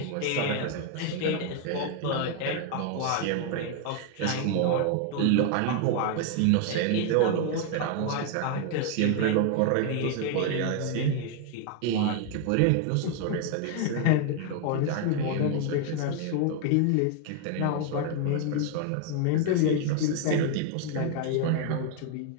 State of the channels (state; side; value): different; both; correlation 0.00